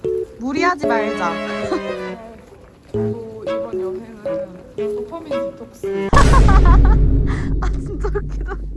무리하지 말자. 또 이번 여행은 도파민 디톡스. 아 진짜 웃기다.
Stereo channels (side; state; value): both; identical; correlation 1.00